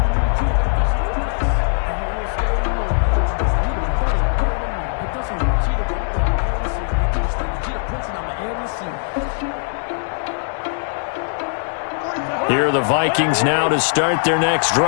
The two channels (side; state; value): right; silent; 65 dB below the other